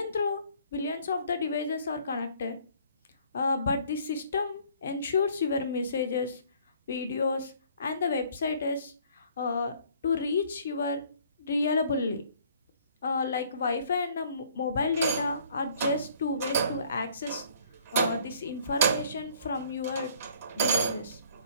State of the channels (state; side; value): inverted; both; correlation -0.58